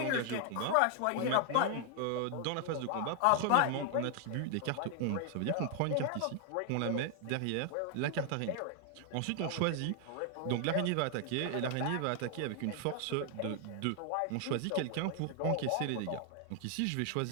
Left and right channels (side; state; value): both; different; correlation 0.00